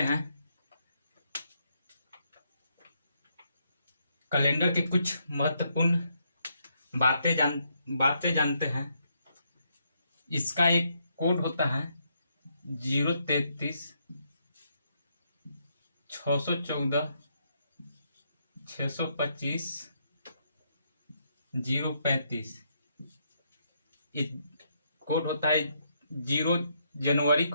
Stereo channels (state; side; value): inverted; both; correlation -0.76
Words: हैं। कैलेंडर के कुछ महत्वपूर्ण बातें जानते हैं। इसका एक कोड होता है 033 614 625 035। कोड होता है 0 जनवरी